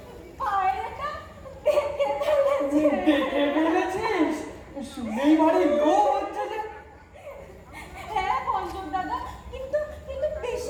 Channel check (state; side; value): identical; both; correlation 1.00